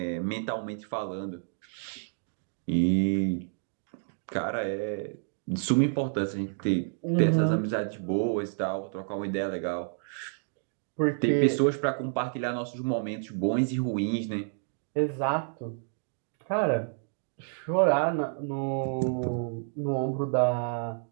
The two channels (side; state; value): left; silent; digital silence